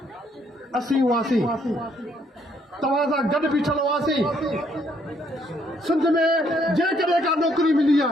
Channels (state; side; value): normal; both; correlation 0.69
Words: असीं हुआसीं तव्हां सां गॾु बीठल हुआसीं सिंध में जेकॾहिं का नौकिरी मिली